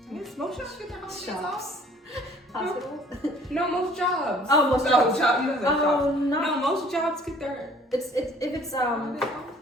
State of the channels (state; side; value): normal; both; correlation 0.55